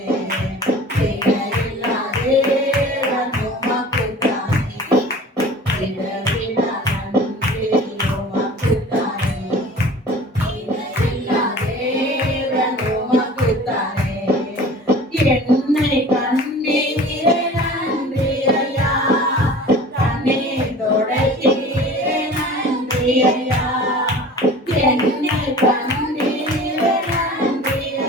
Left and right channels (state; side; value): normal; both; correlation 0.43